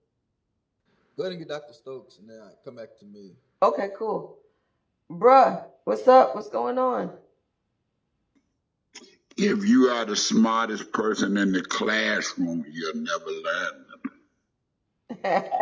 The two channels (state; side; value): identical; both; correlation 1.00